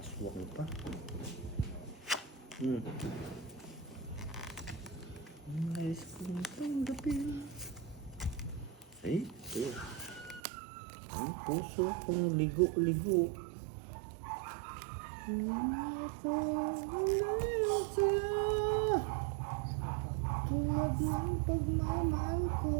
Aswak mo pa. Nais kong tanggapin. Ay, ang puso kong ligo-ligo. Ito ang saya. Tulad ng pagmamahal ko.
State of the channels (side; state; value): left; drops out; at 10.4 s